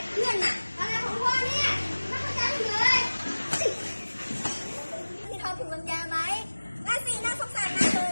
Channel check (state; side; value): inverted; both; correlation -1.00